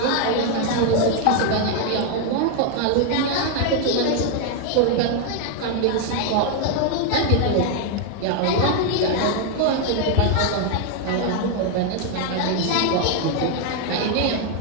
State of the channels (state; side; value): different; both; correlation 0.00